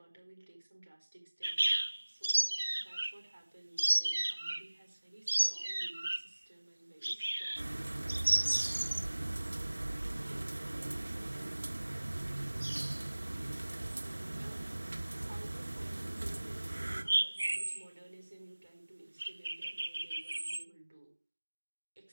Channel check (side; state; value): both; inverted; correlation -1.00